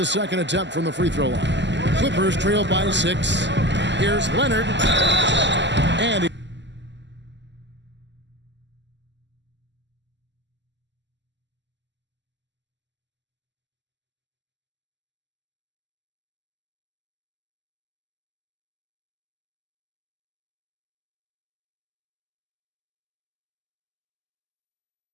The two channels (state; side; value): late; left; 0.52 ms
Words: second attempt from the free throw line. Clippers trail by 6. Here's Leonard. And he